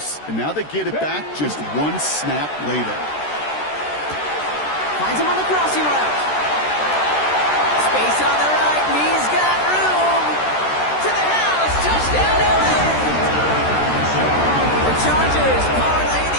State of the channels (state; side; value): late; right; 13 ms